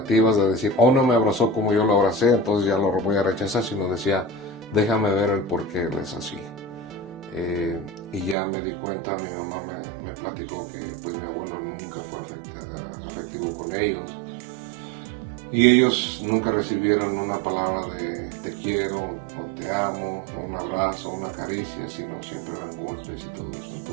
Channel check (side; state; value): left; drops out; at 8.3 s